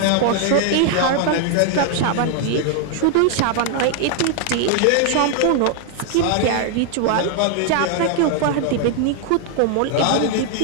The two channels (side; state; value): both; different; correlation 0.00